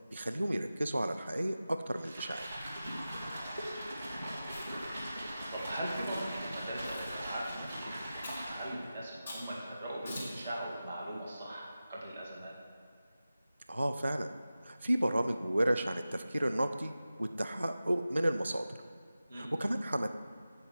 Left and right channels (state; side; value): inverted; both; correlation -0.94